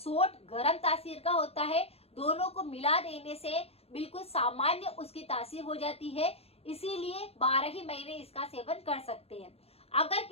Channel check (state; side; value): late; right; 0.29 ms